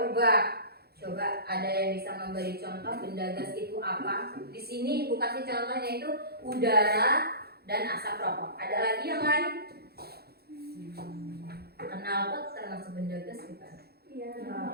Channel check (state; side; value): late; left; 0.46 ms